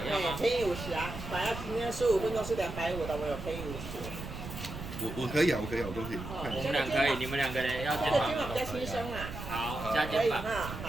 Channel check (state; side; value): noise; right; rumble, 9 dB below the sound